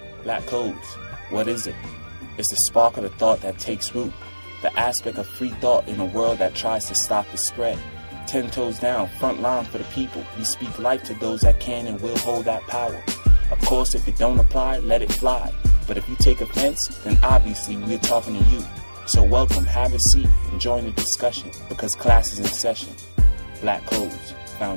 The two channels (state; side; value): inverted; both; correlation -1.00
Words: Black codes, what is it? It's the spark of the thought that takes root, the aspect of free thought in a world that tries to stop the spread. 10 toes down, front line for the people. We speak life to those that can and will hold that power. Of course, if it don't apply, let it fly. But if you take offense, then obviously we're talking to you. So welcome, have a seat, and join the discussion, because class is in session. Black Codes,